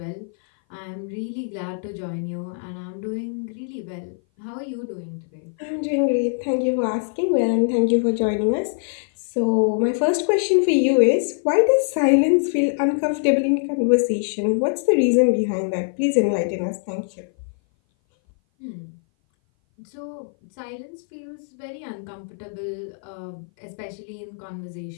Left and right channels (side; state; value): right; silent; 57 dB below the other